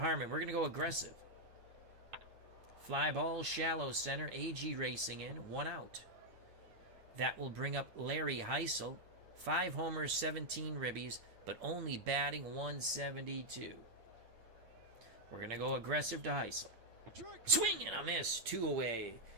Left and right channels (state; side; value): late; left; 8.8 ms